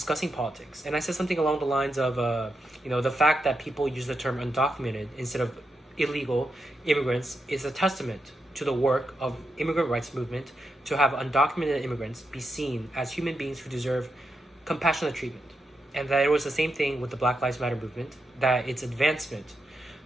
politics. And I said something along the lines of, the fact that people use the term undocumented instead of illegal immigrants is a testament to the work of immigrant rights movement to have undocumented immigrants be seen as human beings who deserve compassionate treatment. And that it was the same thing with the Black Lives Matter movement, that its advancement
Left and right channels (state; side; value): normal; both; correlation 0.85